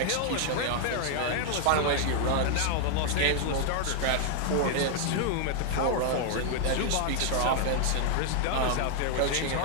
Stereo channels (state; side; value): different; both; correlation 0.00